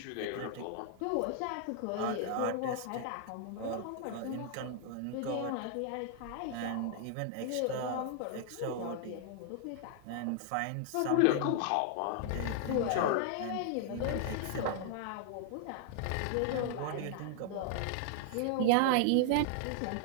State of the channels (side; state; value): both; different; correlation 0.00